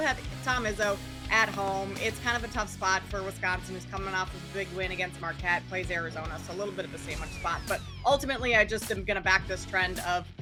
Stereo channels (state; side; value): identical; both; correlation 1.00